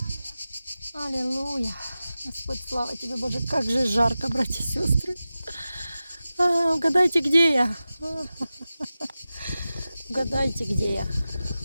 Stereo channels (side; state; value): both; inverted; correlation -0.95